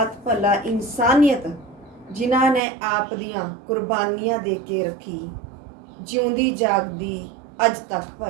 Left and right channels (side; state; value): left; drops out; at 2.6 s